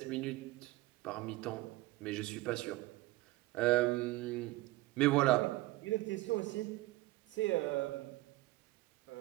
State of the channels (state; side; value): quieter; left; 19.4 dB